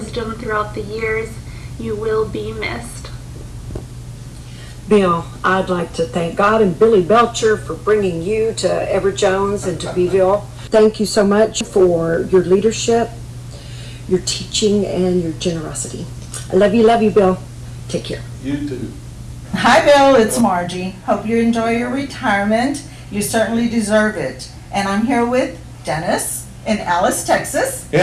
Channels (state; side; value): identical; both; correlation 1.00